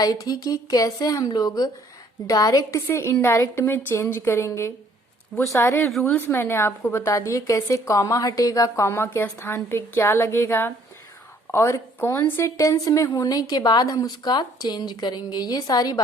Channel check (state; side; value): normal; both; correlation 0.61